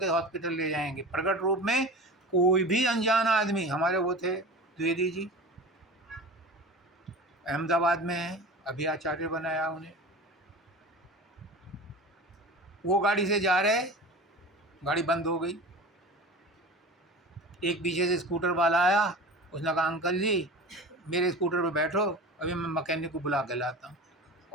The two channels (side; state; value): both; normal; correlation 0.34